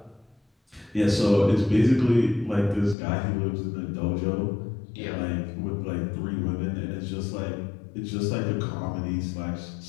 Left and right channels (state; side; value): drops out; right; at 3.0 s